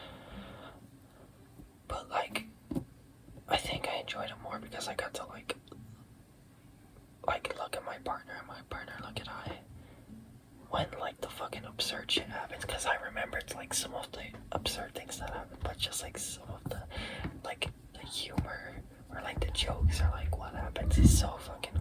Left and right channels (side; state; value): both; identical; correlation 1.00